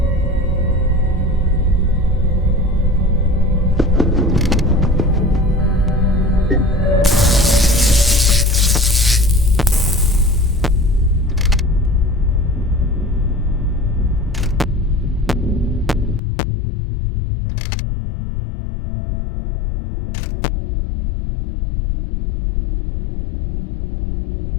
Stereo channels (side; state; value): right; drops out; at 16.2 s